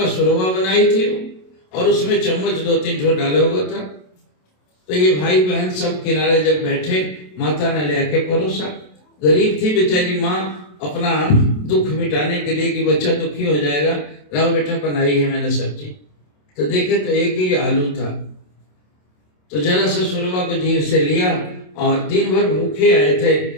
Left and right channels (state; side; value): late; right; 27 ms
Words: सुरवा बनाई थी और उसमें चम्मच 2-3 ठो डाला हुआ था। तो ये भाई बहन सब किनारे जब बैठे, माता ने लेके परोसा। गरीब थी बेचारी माँ, अपना दुख मिटाने के लिए कि बच्चा दुखी हो जाएगा, लाओ बेटा बनाई है मैंने सब्जी। तो देखे तो एक ही आलू था। तो जरा सा सुरवा को जीभ से लिया और दिन भर भूखे आए थे,